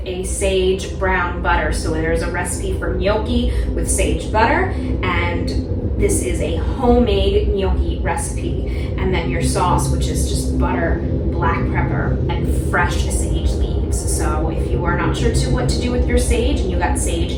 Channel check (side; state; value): both; identical; correlation 1.00